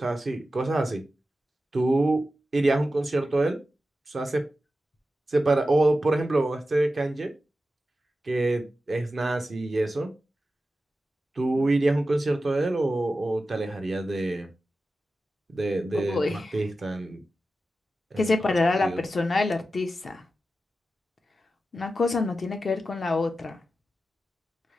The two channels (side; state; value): both; normal; correlation 0.93